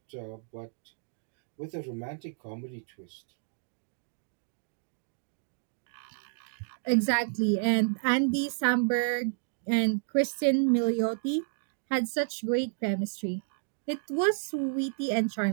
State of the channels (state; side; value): silent; left; digital silence